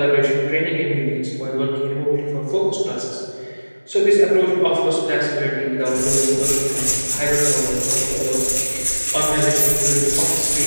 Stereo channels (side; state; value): both; inverted; correlation -1.00